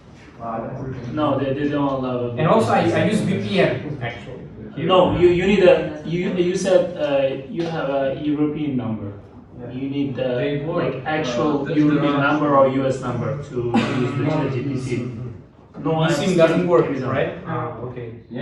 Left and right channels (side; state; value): both; identical; correlation 1.00